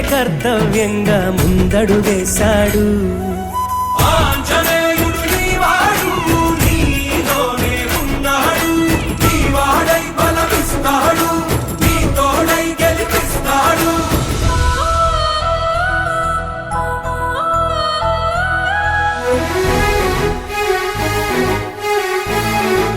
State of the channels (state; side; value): identical; both; correlation 1.00